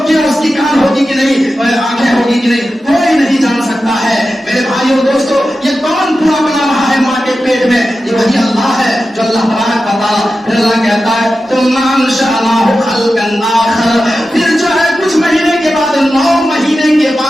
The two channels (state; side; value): normal; both; correlation 0.92